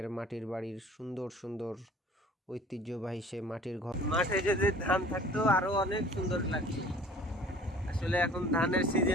মাটির বাড়ির সুন্দর সুন্দর ঐতিহ্যবাহী সে মাটির ঘর। মাঠে যদি ধান থাকতো আরো অনেক সুন্দর লাগতো। আসলে এখন ধানের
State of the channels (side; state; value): both; normal; correlation 0.49